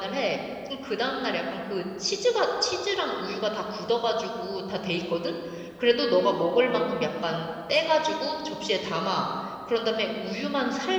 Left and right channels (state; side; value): identical; both; correlation 1.00